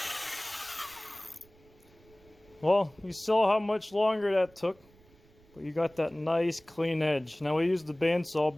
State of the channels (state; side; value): noise; right; rumble, 28 dB below the sound